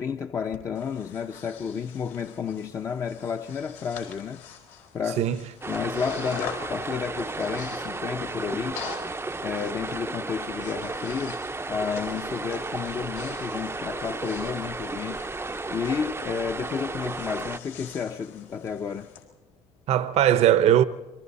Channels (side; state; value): both; normal; correlation 0.46